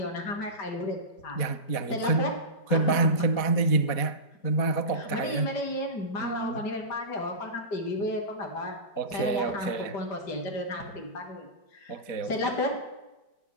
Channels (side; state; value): right; late; 4.2 ms